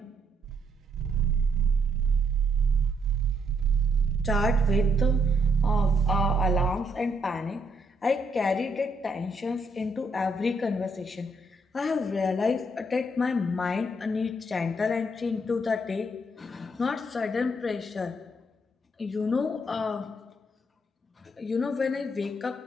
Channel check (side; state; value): both; normal; correlation 0.74